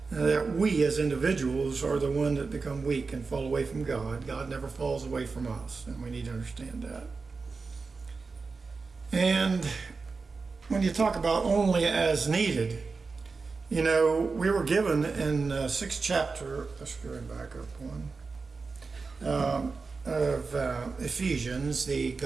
that we as individuals are the one that become weak and fall away from God. God never falls away from us, and we need to understand that. And when you talk about only as needed, you know, we were given in 6th chapter, let's go back up one, of Ephesians,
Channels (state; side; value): quieter; left; 4.4 dB